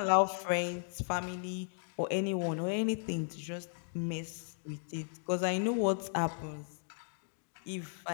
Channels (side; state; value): right; silent; digital silence